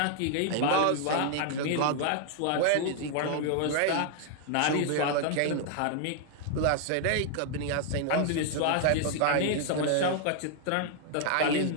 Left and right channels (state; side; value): different; both; correlation 0.00